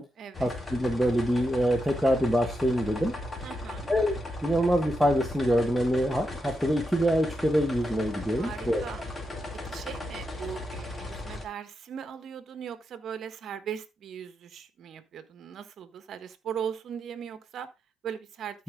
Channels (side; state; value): both; normal; correlation 0.85